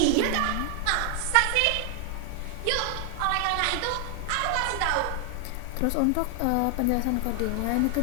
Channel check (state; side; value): different; both; correlation 0.00